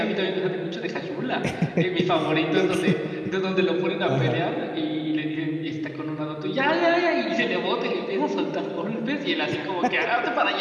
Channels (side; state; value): both; identical; correlation 1.00